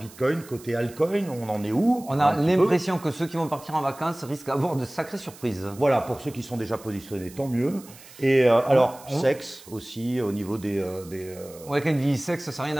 côté altcoin? On en est où? On a l'impression que ceux qui vont partir en vacances risquent d'avoir de sacrées surprises. Voilà, pour ceux qui sont déjà positionnés, tant mieux. Et alors, sexe aussi, au niveau des Ouais, quand il dit sexe, ça n'a rien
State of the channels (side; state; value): right; noise; hiss, 20 dB below the sound